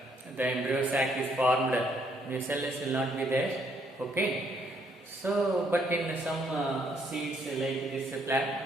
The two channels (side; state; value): both; normal; correlation 0.69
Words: embryo sac is formed, nucellus will not be there. Okay, so but in some seeds like this black